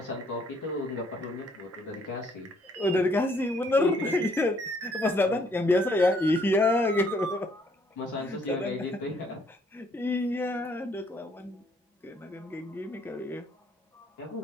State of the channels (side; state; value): both; normal; correlation 0.66